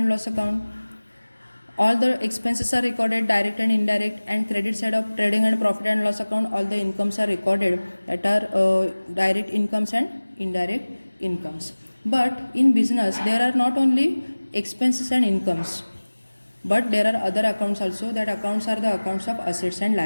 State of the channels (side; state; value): both; inverted; correlation -1.00